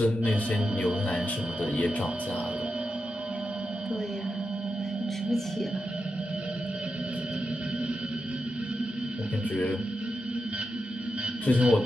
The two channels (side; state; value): both; normal; correlation 0.88